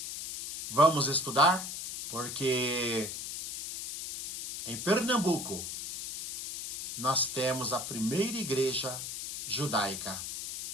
Vamos estudar? Porque em Pernambuco nós temos a primeira igreja judaica.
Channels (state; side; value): noise; left; hiss, 7 dB below the sound